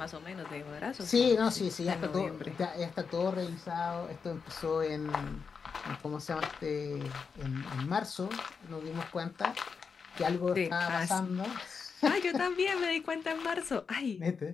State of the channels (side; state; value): right; quieter; 5.6 dB